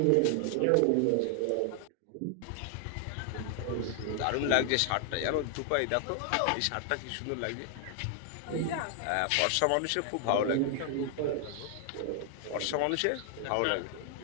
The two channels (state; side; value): different; both; correlation 0.00